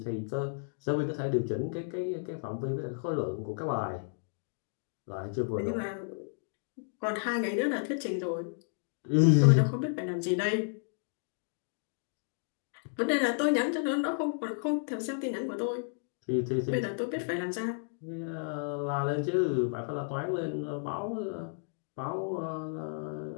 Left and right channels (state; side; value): silent; right; digital silence